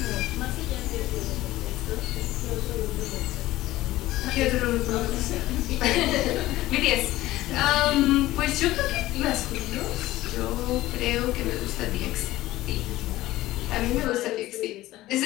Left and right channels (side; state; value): right; quieter; 16.5 dB